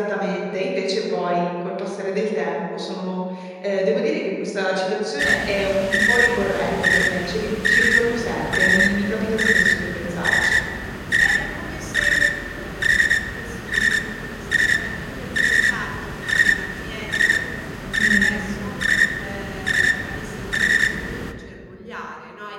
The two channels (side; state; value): both; identical; correlation 1.00